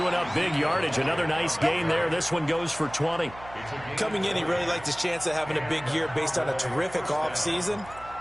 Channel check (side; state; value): right; noise; hum, 18 dB below the sound